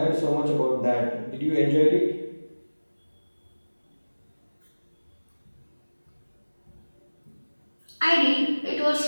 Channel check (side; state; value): both; inverted; correlation -1.00